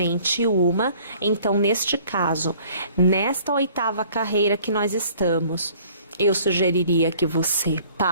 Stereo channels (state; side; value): inverted; both; correlation -0.55